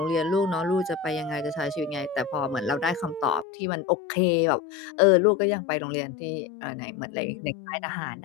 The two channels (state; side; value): drops out; right; at 3.5 s